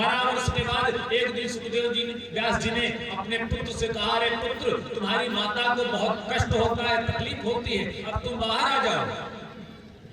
वर्ष के बाद एक दिन सुखदेव जी ने, व्यास जी ने अपने पुत्र से कहा रे पुत्र तुम्हारी माता को बहुत कष्ट होता है, तकलीफ होती है, अब तुम बाहर आ जाओ।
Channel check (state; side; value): identical; both; correlation 1.00